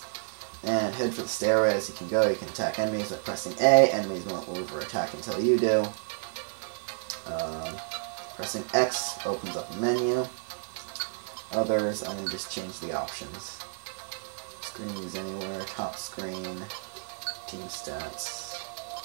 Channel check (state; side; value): silent; left; 57 dB below the other